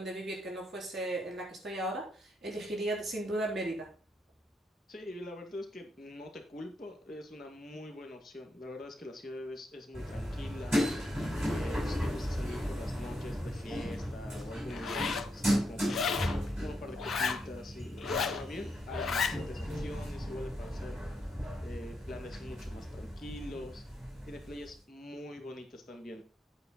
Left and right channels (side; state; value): both; normal; correlation 0.80